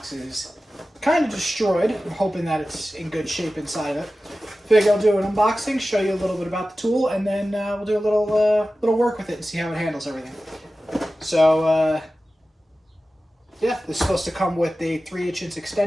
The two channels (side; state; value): both; normal; correlation 0.95